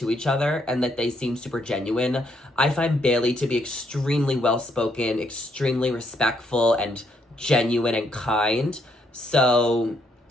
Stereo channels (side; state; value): both; normal; correlation 0.73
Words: each other and that they seem super genuine. I find Bailey to be extremely well-spoken, extremely respectful, and genuine and kind. So